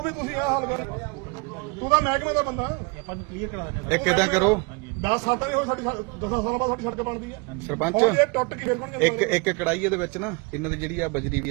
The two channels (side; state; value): left; quieter; 29.1 dB